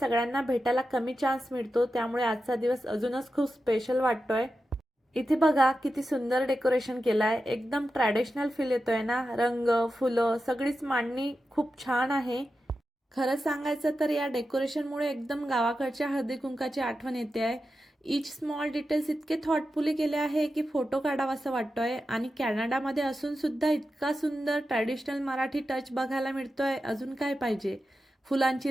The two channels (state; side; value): normal; both; correlation 0.91